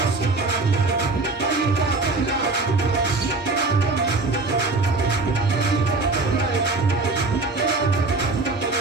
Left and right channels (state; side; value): quieter; left; 3.5 dB